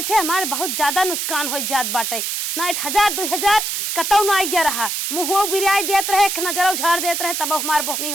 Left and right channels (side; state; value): right; noise; hiss, 2 dB below the sound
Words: हमारे बहुत ज्यादा नुकसान हो जात बाटे ना 1000 2000 कतौ ना गया रहा मुँह बिराई देत रहे एक नजर उझाड़ देत रहे तब हमार बोहनी